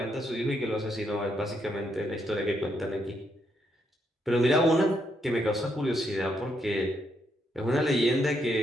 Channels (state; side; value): normal; both; correlation 0.77